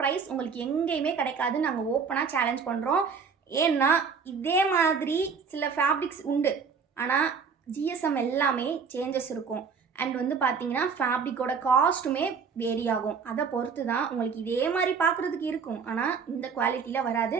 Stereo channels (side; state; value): left; quieter; 5.8 dB